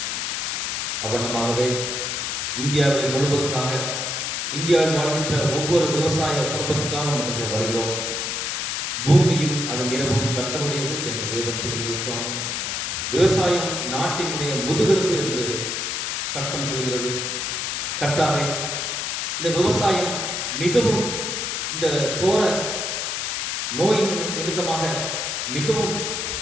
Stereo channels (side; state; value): left; noise; hiss, 1 dB below the sound